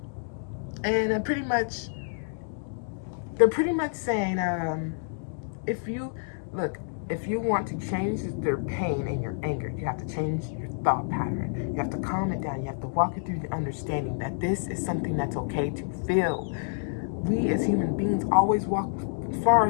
pretty much, they're pretty much saying, if you want to change their pain and your anger, you have to change your thought pattern. You have to calm it down. You have to walk it through the understanding that this is something that's okay to feel. We as human beings always walk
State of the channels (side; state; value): right; silent; digital silence